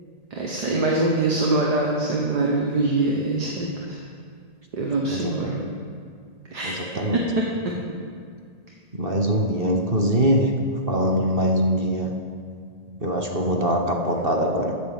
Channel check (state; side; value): late; left; 1.8 ms